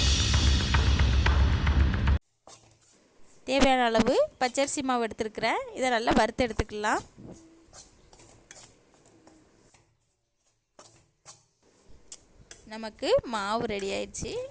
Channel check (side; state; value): both; identical; correlation 1.00